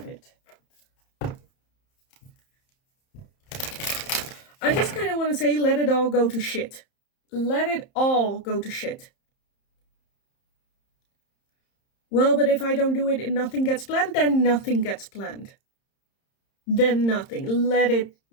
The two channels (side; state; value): right; late; 30 ms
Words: it. I just kind of want to say, let it all go to shit. Let it all go to shit. Well, but if I don't do it and nothing gets planned, then nothing gets planned. Then nothing.